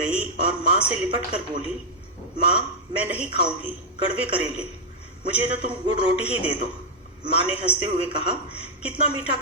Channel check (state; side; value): normal; both; correlation -0.03